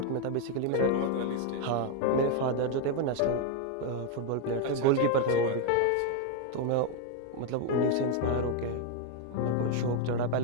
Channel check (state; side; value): different; both; correlation 0.01